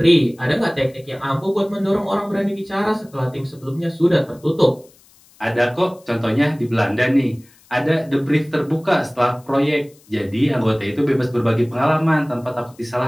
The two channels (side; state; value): left; noise; hiss, 29 dB below the sound